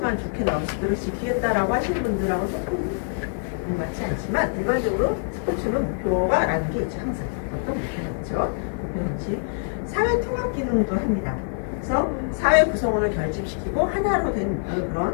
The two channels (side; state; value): right; silent; digital silence